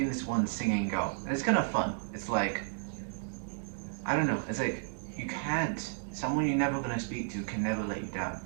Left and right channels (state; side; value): silent; left; digital silence